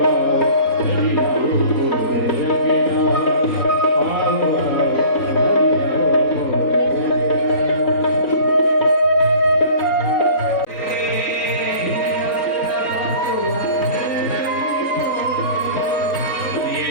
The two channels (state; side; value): late; right; 3.8 ms